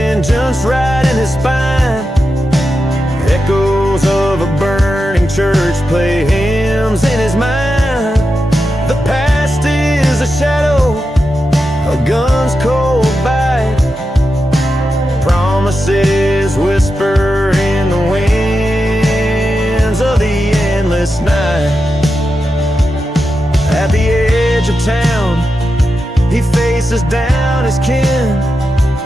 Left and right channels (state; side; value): normal; both; correlation 0.89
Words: right in his spine. Echoes of a burning church play hymns in his mind. The past is a shadow, a gun's cold bite. Promises whisper in the winds of the endless night. At the edge of town, he faces down his kin.